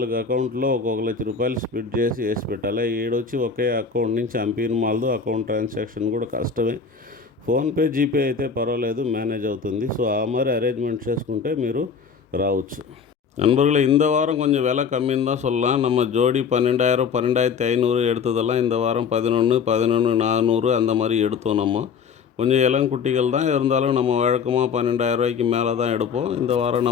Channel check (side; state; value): right; quieter; 6.0 dB